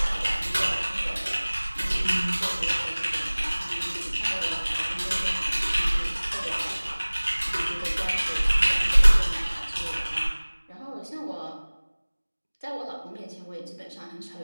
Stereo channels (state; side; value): inverted; both; correlation -1.00